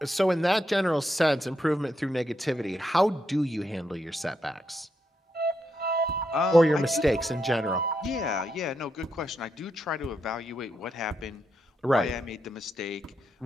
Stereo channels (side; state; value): both; normal; correlation 0.82